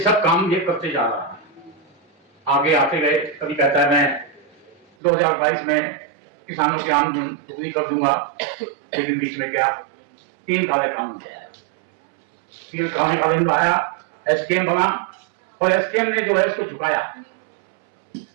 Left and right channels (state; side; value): drops out; left; at 4.9 s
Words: काम ये करते जा रहा है। आगे आते गए, कभी कहता है मैं 2022 में किसानों की आमदनी दोगुनी कर दूंगा, लेकिन बीच में क्या 3 काले कानून आया, 3 काले कानून आया, एसकेएम बना और एसकेएम ने जो है इसको झुकाया।